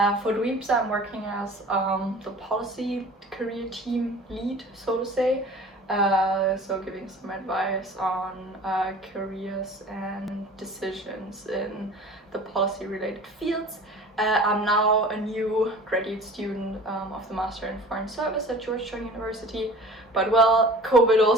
For Dweeps, I'm working as the policy career team lead, so to say. So giving some advice on careers and decisions in the policy related fields. I'm now a new graduate student of the Master in Foreign Service at Georgetown University, but well, COVID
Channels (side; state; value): both; normal; correlation 0.43